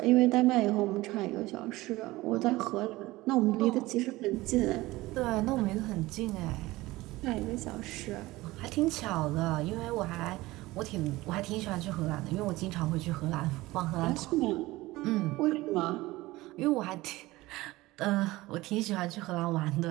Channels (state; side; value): quieter; left; 19.1 dB